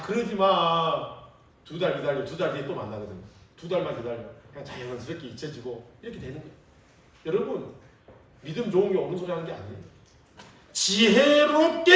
그러지 마. 2달 기다려. 2달 뒤에 또 만나거든요. 2달만 기다려. 그냥 자연스럽게 잊혀지고 이렇게 되는 거예요. 여러분 믿음 좋은 게 옳은 소리 하는 게 아니에요.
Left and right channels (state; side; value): identical; both; correlation 1.00